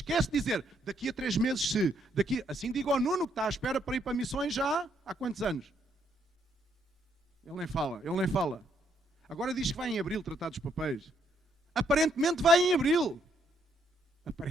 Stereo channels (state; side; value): normal; both; correlation 0.73